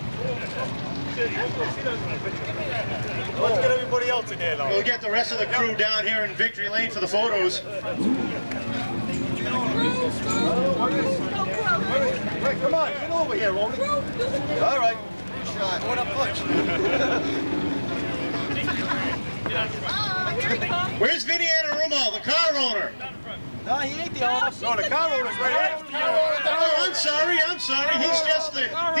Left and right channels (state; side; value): inverted; both; correlation -1.00